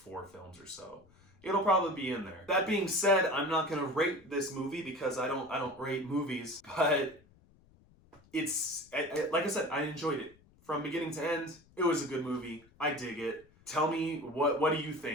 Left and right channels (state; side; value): noise; left; rumble, 28 dB below the sound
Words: films or so, it'll probably be in there. That being said, I'm not gonna rate this movie because I don't rate movies, but it's like I said, I enjoyed it from beginning to end. It was a good movie. I dig it. Tell me, what do you